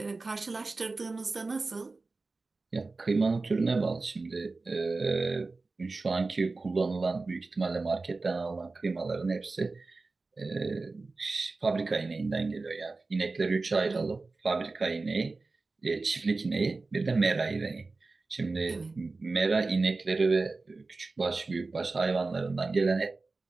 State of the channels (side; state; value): left; quieter; 3.7 dB